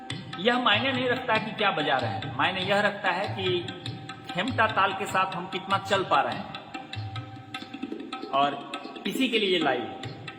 यह मायने नहीं रखता कि क्या बजा रहे हैं, मायने यह रखता है कि खेमटा ताल के साथ हम कितना चल पा रहे हैं, और इसी के लिए लाइव।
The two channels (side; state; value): both; identical; correlation 1.00